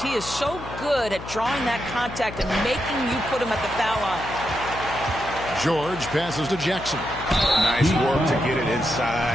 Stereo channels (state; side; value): noise; left; hum, 12 dB below the sound